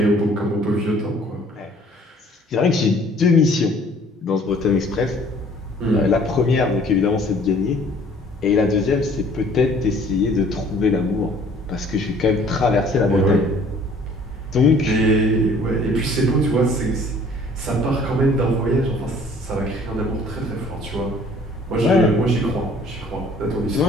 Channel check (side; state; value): both; normal; correlation 0.55